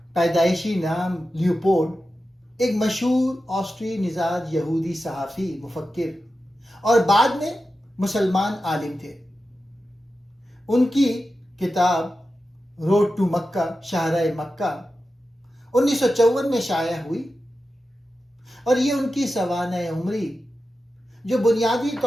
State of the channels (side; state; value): both; normal; correlation 0.92